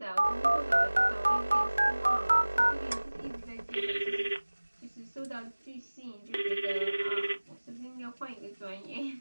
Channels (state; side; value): inverted; both; correlation -1.00